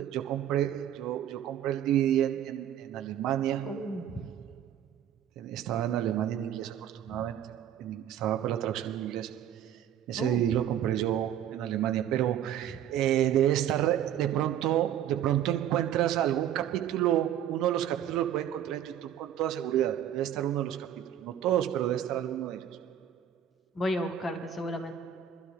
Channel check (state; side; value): quieter; left; 10.2 dB